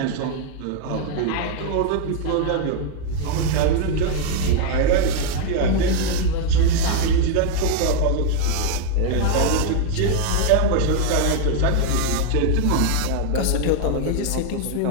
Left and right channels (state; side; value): different; both; correlation 0.00